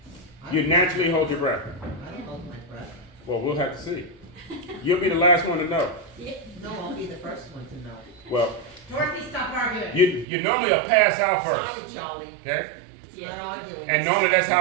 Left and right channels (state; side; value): drops out; left; at 10.2 s